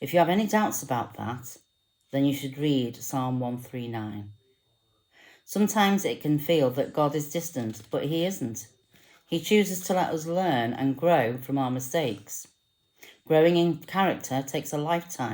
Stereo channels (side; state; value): both; identical; correlation 1.00